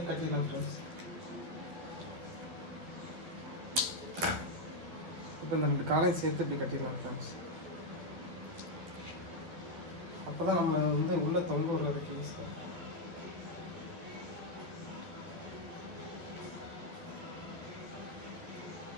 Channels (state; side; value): late; left; 12 ms